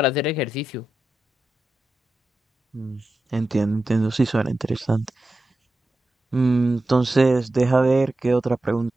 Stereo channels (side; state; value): both; normal; correlation 0.91